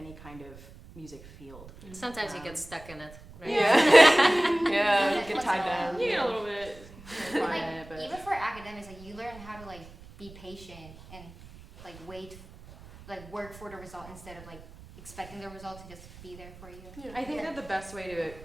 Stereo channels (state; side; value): noise; right; rumble, 19 dB below the sound